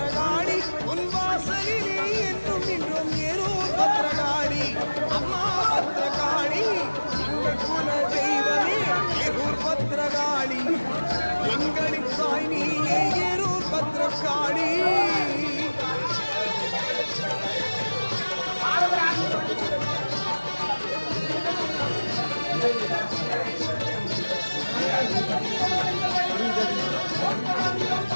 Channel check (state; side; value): inverted; both; correlation -1.00